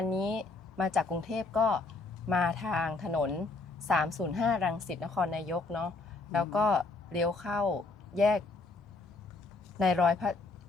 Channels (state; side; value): quieter; right; 3.7 dB